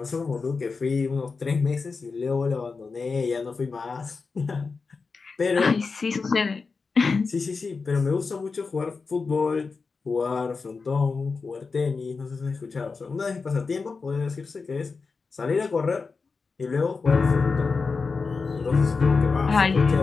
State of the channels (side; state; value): right; quieter; 4.6 dB